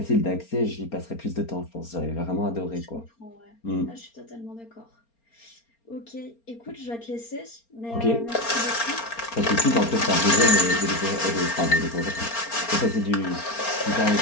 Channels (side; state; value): right; late; 4.3 ms